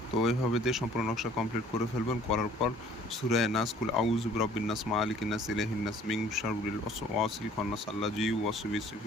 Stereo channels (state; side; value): normal; both; correlation 0.55